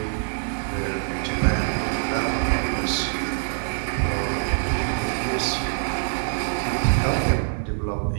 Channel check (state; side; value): silent; left; 62 dB below the other